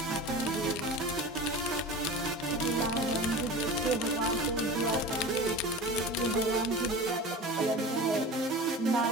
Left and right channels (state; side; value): normal; both; correlation 0.34